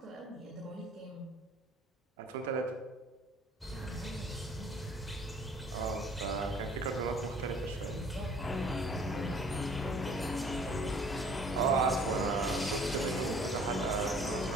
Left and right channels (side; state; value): both; normal; correlation 0.54